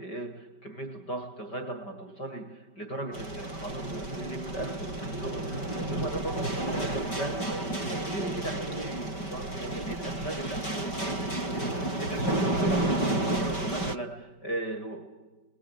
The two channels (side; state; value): right; late; 5.2 ms